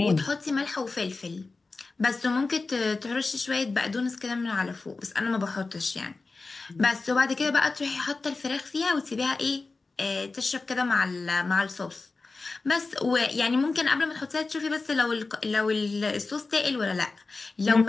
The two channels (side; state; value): right; quieter; 3.8 dB